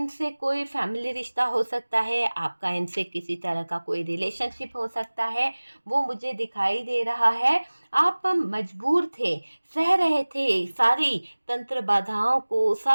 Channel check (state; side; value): inverted; both; correlation -1.00